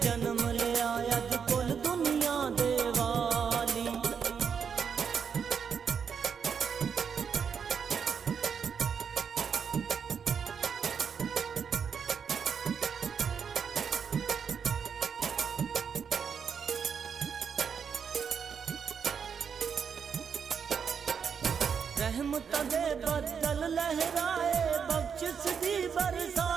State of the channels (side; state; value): left; quieter; 6.8 dB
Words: जन्म लिया अज कुल दुनिया दे वाली। रहमत दे बदल लहराए बख्शिश दी